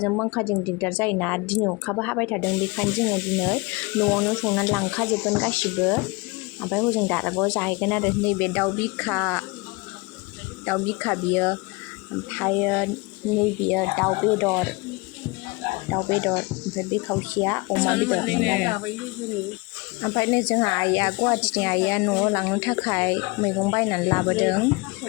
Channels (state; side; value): quieter; right; 25.7 dB